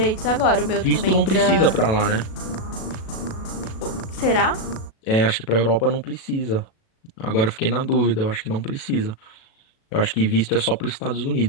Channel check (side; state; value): right; late; 37 ms